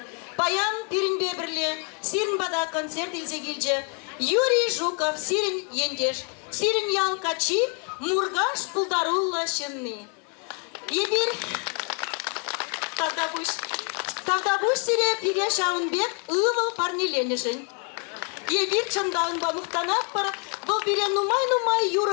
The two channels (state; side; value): quieter; right; 38.2 dB